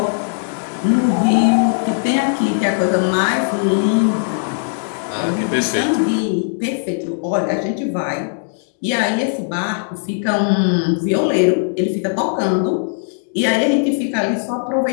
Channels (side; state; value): right; silent; digital silence